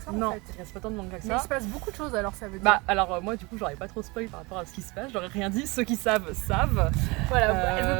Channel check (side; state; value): left; quieter; 25.5 dB